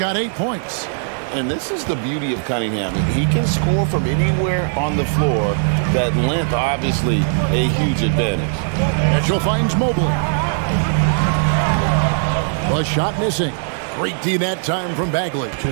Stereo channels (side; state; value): left; silent; digital silence